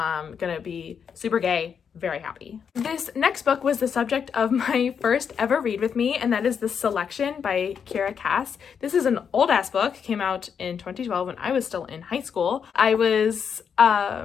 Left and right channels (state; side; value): quieter; right; 7.1 dB